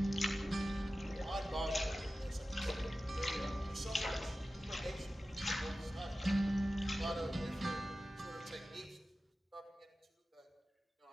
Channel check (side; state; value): both; normal; correlation 0.95